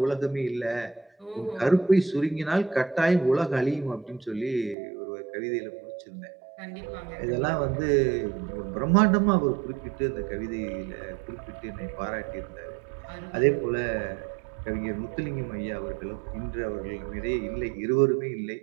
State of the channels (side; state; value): left; drops out; at 4.8 s